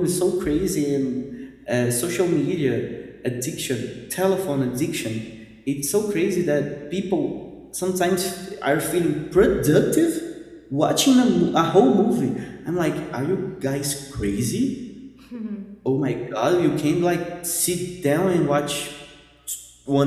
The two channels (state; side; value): identical; both; correlation 1.00